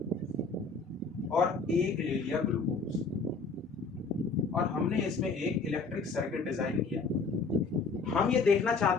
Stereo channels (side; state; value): right; quieter; 4.3 dB